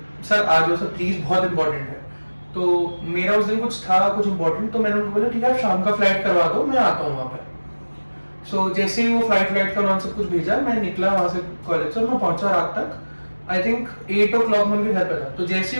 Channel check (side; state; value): both; inverted; correlation -1.00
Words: सर आ जाओ सर प्लीज, बहुत इंपॉर्टेंट है. तो मेरा उस दिन कुछ था, कुछ इंपॉर्टेंट. तो मैंने उनको बोला ठीक है आप शाम का फ्लाइट करवा दो, मैं आता हूँ वहाँ पे. सो जैसे ही वो फ्लाइट का उन्होंने सब कुछ भेजा, मैं निकला वहाँ से कॉलेज से. मैं पहुंचा रात तक, आई थिंक 8 o'clock में उनके घर पे था. तो जैसे